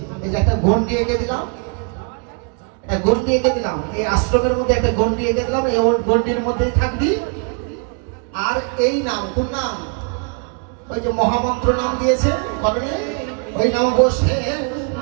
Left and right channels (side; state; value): left; quieter; 37.1 dB